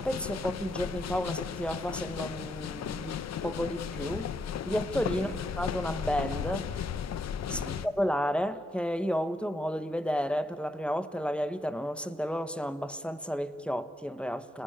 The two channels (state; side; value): normal; both; correlation 0.78